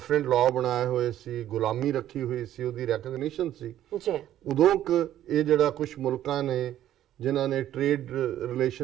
ਲਾਅ ਬਣਾਏ ਹੋਏ ਸੀ, ਗੁਲਾਮੀ ਰੱਖੀ ਹੋਈ ਸੀ, ਉਹਦੀ ਰੈਕਗਨੀਸ਼ਨ ਸੀ। ਜੀ ਉਦੋਂ ਇਹ ਜਿਹੜਾ ਕੁਝ ਮੁਲਕਾਂ ਨੇ ਜਿਨ੍ਹਾਂ ਨੇ ਟ੍ਰੇਡ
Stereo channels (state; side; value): quieter; left; 12.2 dB